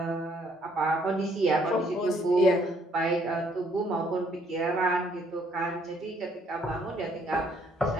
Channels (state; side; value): normal; both; correlation 0.66